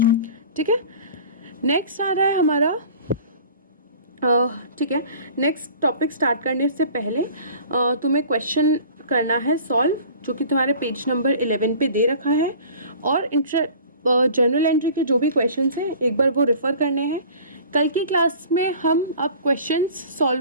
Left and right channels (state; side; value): inverted; both; correlation -0.45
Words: ठीक है। नेक्स्ट आ रहा है हमारा, ठीक है, नेक्स्ट टॉपिक स्टार्ट करने से पहले तुम्हें क्वेश्चन करना है सॉल्व, जो कि तुम्हारे पेज नंबर 11 पे दे रखा है। और जनरल एंट्री के जो भी क्वेश्चंस हैं एक बार वो रेफ़र करने हैं। कल की क्लास में हम अब क्वेश्चंस